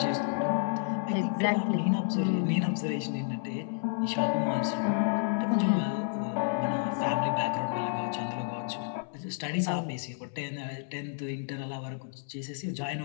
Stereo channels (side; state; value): right; silent; 57 dB below the other